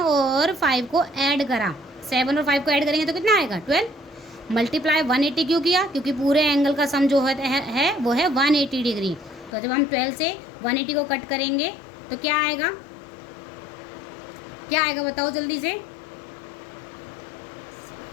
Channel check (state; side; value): drops out; right; at 9.5 s